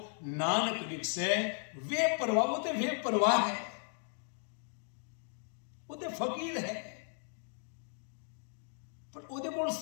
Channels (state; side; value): silent; right; 54 dB below the other